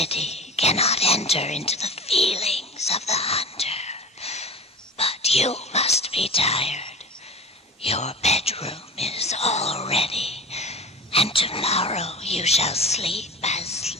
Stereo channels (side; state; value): both; normal; correlation 0.34